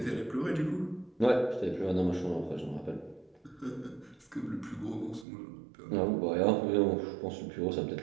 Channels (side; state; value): left; drops out; at 5.2 s